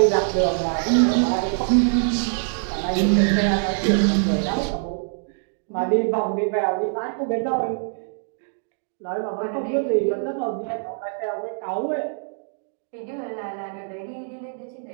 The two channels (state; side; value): silent; left; digital silence